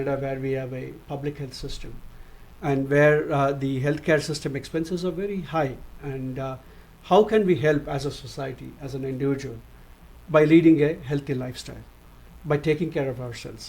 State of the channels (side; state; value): both; identical; correlation 1.00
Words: where we have a public health system, and where the healthcare system expenses are very high, and how can we help as a society, as an individual, by leading a healthy lifestyle, by taking care of